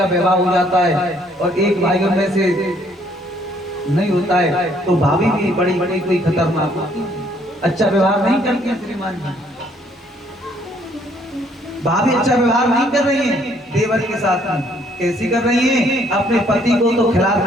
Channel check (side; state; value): both; normal; correlation 0.65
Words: विवाह हो जाता है और एक भाइयों में से नहीं होता है, तो भाभी भी बड़ी बड़ी कोई खतरनाक होती है, अच्छा व्यवहार नहीं करती है। श्रीमान जी, भाभी अच्छा व्यवहार नहीं कर रही है देवर के साथ में। कैसी कर रही है? अपने पति को तो